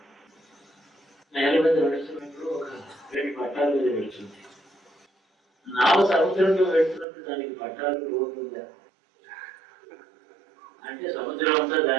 నేల మీద నడుస్తున్నప్పుడు ఒక 2 పట్టాల మీద వెళ్తుంది. నావ సముద్రంలో వెళ్తున్నప్పుడు దానికి పట్టాలు రోడ్డు ఉందా అంటే సముద్రం అంతా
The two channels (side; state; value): left; drops out; at 7.1 s